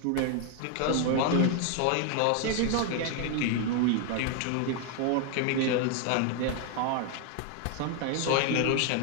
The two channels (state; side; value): different; both; correlation 0.01